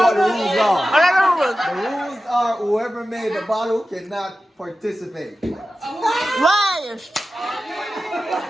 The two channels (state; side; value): normal; both; correlation 0.94